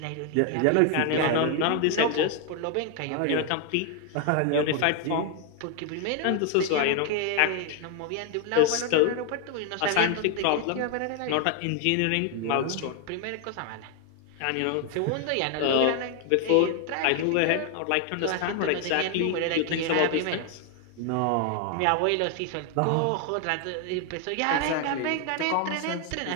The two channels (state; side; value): different; both; correlation 0.00